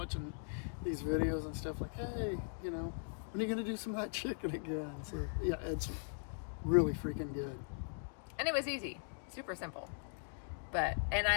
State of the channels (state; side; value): silent; right; digital silence